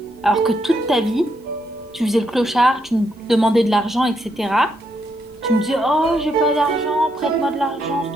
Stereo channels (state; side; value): normal; both; correlation 0.78